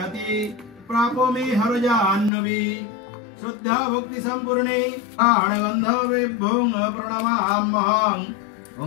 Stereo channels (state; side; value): drops out; right; at 2.3 s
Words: प्रापो मे हरजाह्नवी। श्रद्धा भक्ति संपूर्णे प्राणगंधवेभ्यों प्रणमाम्यहं।